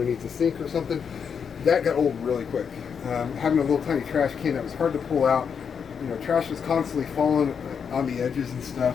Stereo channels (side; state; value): right; quieter; 6.8 dB